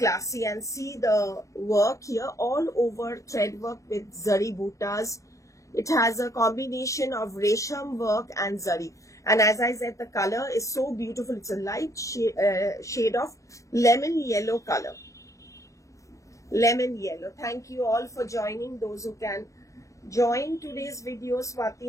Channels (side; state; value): right; late; 0.15 ms